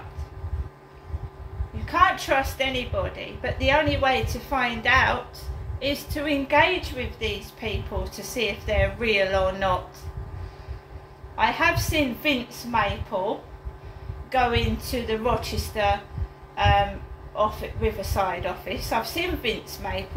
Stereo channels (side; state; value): both; identical; correlation 1.00